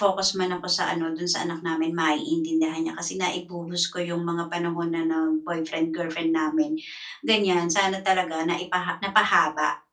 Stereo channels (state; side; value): identical; both; correlation 1.00